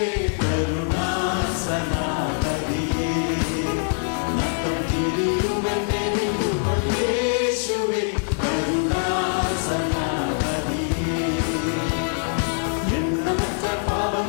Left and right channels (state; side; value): silent; right; 58 dB below the other